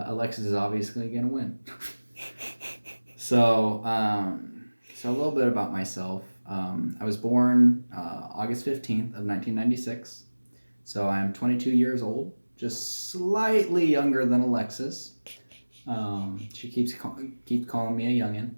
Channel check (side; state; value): both; inverted; correlation -1.00